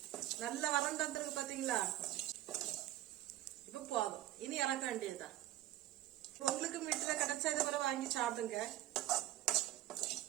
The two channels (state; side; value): quieter; left; 14.6 dB